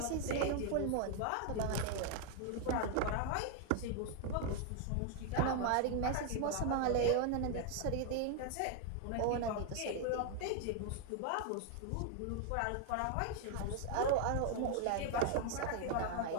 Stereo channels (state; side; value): different; both; correlation 0.00